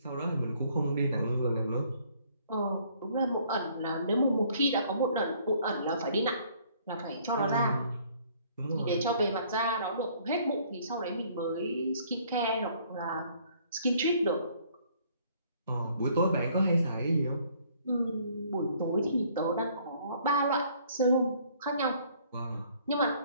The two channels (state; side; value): inverted; both; correlation -0.61